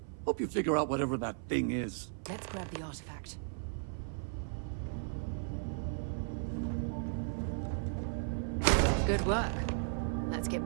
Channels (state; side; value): silent; left; 54 dB below the other